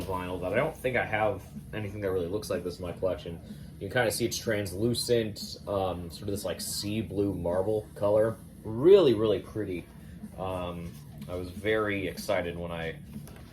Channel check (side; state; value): both; identical; correlation 1.00